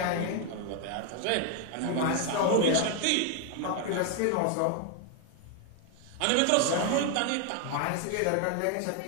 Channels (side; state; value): both; different; correlation 0.01